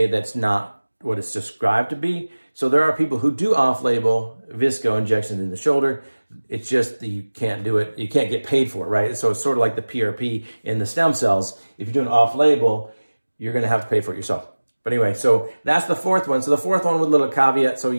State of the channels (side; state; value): both; inverted; correlation -1.00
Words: that's not what it's described to be. So there are people who do off-label VSCO injections in the shoulder. It's just that you can't do it. You can't get paid for it, right? So it's sort of like the PRP in the stem cells. If you're doing off-label, you're going to have to pay for it yourself. But anyway, so that's the 4th one. So the 4th one with a little caveat. So